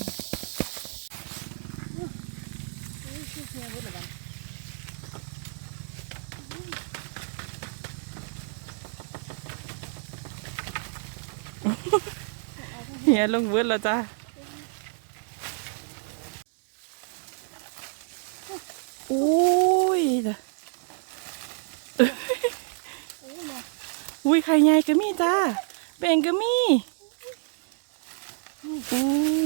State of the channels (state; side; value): silent; left; 59 dB below the other